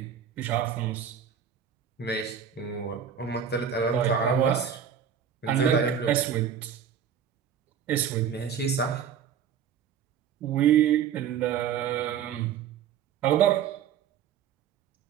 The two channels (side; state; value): left; quieter; 8.1 dB